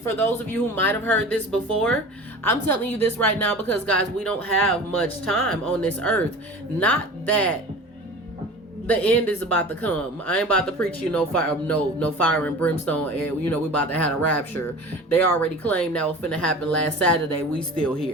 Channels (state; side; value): normal; both; correlation 0.37